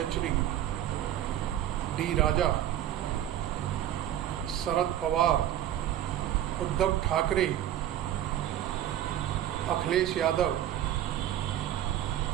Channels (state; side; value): quieter; left; 11.7 dB